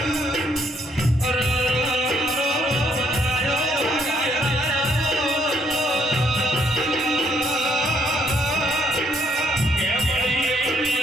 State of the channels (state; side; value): normal; both; correlation 0.70